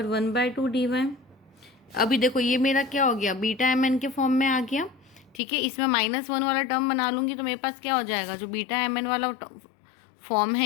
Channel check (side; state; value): right; drops out; at 5.4 s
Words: dy। अभी देखो ये मेरा क्या हो गया बीटा एम एन के फॉर्म में आ गया, ठीक है। इसमें -1 वाला टर्म बना लूँगी तो मेरे पास क्या हो जाएगा, जो बीटा एम एन वाला फॉर्म